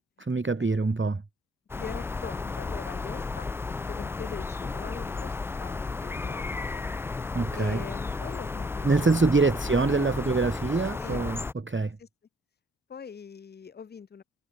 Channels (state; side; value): normal; both; correlation 0.64